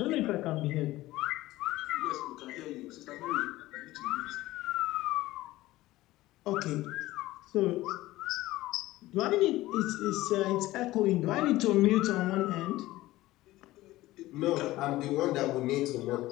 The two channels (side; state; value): right; quieter; 17.2 dB